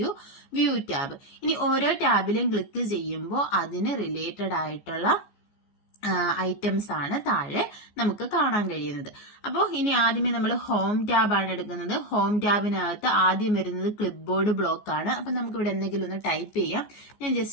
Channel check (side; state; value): right; late; 14 ms